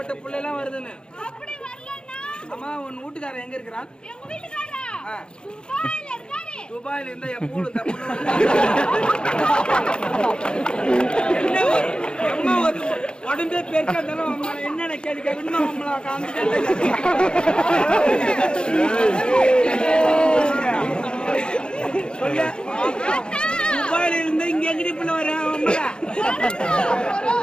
புள்ள எல்லாம் வருதுன்னு. அம்மா உன் வீட்டுக்காரன் எங்க இருக்கிறான்? துபாயில இருந்தா எப்போ என்ன உடம்பே பெருக்கா இருந்தாலும் என்னென்ன கேள்வி கேட்கணும் நம்மள சொல்ல. துபாயில இருந்து இங்க எங்கடி புள்ள வர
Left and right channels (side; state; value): right; late; 0.050 ms